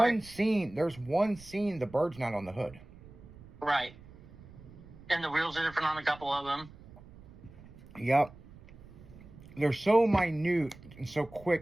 scene, the bird's not on the hood. Right. And the wheels are different on a couple of them. Yep. They're so minute and so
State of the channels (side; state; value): right; noise; rumble, 20 dB below the sound